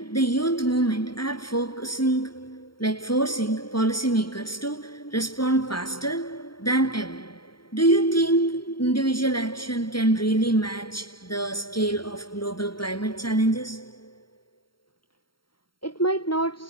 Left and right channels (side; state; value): right; late; 0.73 ms